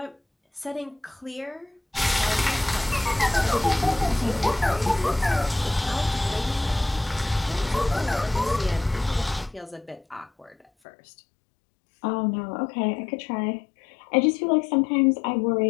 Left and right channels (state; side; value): drops out; right; at 10.7 s